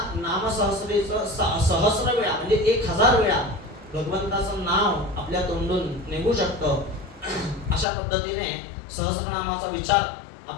नामसहस्रीचं सहस्र वेळा म्हणजे 1000 वेळा भगवंताचं नाव आपल्या तोंडून निघू शकतं. अशा पद्धतीने सहस्रनामाचा विचार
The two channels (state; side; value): drops out; right; at 7.9 s